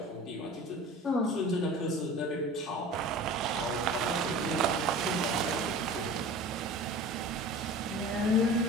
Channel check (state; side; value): normal; both; correlation 0.39